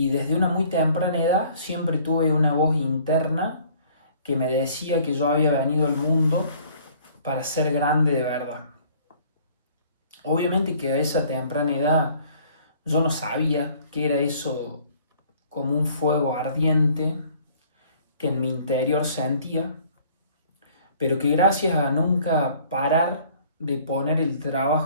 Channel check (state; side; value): inverted; both; correlation -0.56